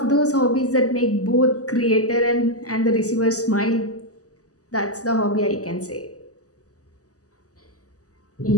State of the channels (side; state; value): right; late; 0.67 ms